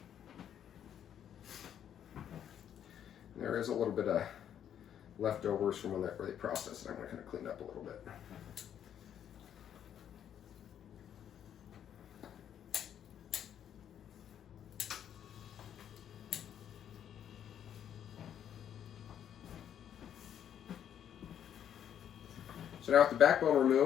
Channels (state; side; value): quieter; right; 9.6 dB